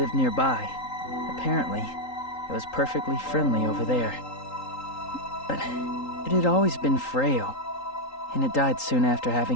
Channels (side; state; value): right; late; 3.8 ms